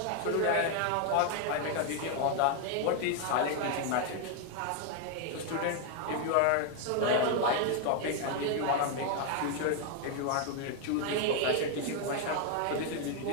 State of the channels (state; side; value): different; both; correlation 0.00